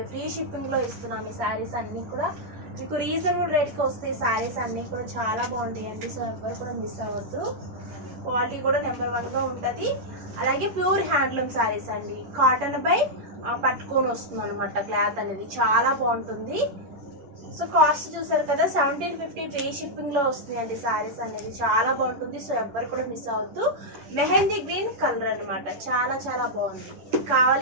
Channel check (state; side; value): late; left; 11 ms